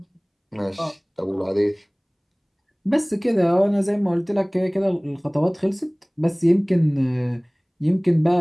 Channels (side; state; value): both; identical; correlation 1.00